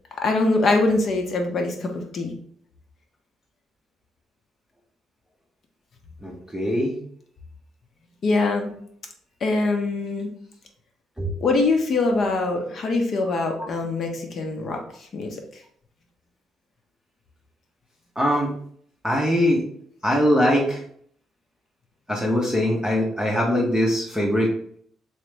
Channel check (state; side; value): normal; both; correlation 0.78